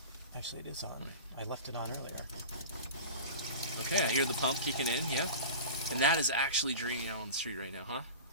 Actually, it is on. I left it on earlier. Okay, I hear the pump kicking in. Yeah, and that is actually draining out on the street right now,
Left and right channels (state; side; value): inverted; both; correlation -0.32